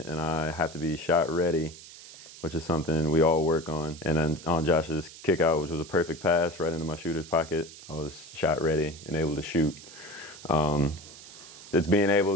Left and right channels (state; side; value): noise; right; hiss, 17 dB below the sound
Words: and I have to be shot ready, which is something we all work on. And then on Josh's kick out, which was a perfect pass right into my shooter's pocket, I was shot ready and able to shoot. It's being